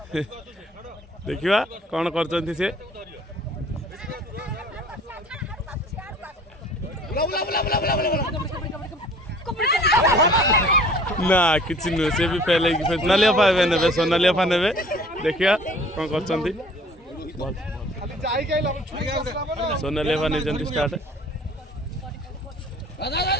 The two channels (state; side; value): normal; both; correlation 0.50